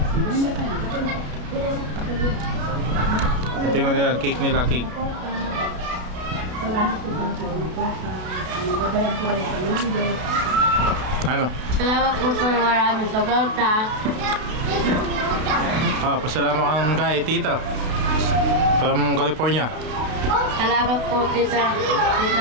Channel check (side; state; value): left; late; 33 ms